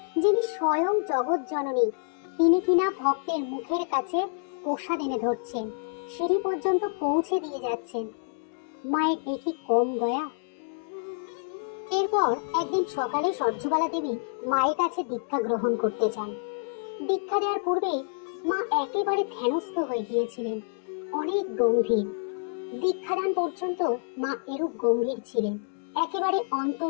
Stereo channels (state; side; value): silent; right; digital silence